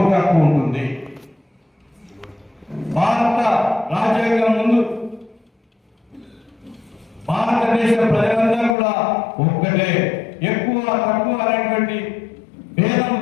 హక్కు ఉంటుంది. భారత రాజ్యాంగం ముందు భారతదేశ ప్రజలందరూ కూడా ఒక్కటే, ఎక్కువ తక్కువ అనేటువంటి భేదం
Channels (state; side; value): drops out; right; at 8.8 s